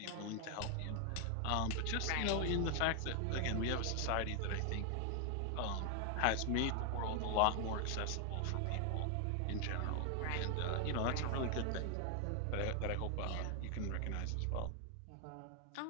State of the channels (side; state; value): both; different; correlation 0.00